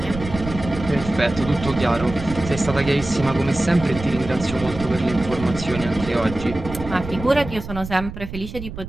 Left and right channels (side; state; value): right; noise; rumble, 10 dB below the sound